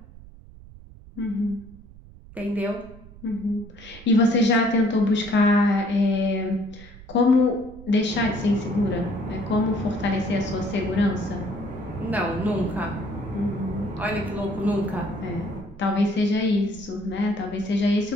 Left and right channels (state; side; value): noise; right; rumble, 19 dB below the sound